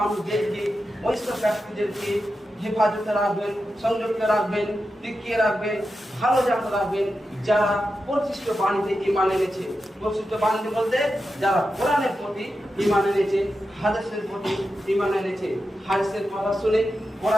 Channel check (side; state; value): both; normal; correlation 0.90